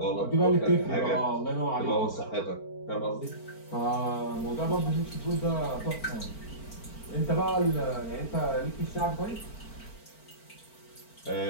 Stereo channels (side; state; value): right; late; 4.4 ms